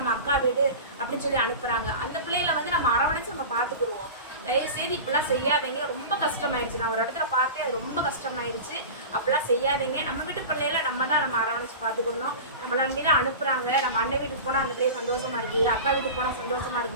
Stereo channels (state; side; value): inverted; both; correlation -0.31